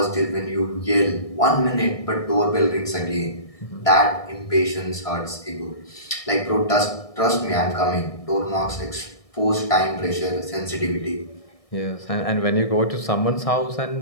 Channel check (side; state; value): right; late; 1.6 ms